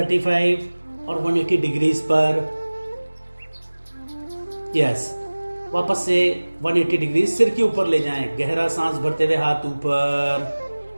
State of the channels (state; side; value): inverted; both; correlation -1.00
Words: और 180 डिग्रीज पर। यस, वापस से 180 डिग्री सिर के ऊपर ले जाएं। गहरा सांस भरते हुए हाथ ऊपर